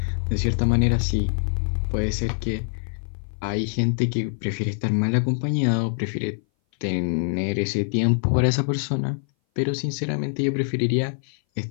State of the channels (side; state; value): right; silent; 59 dB below the other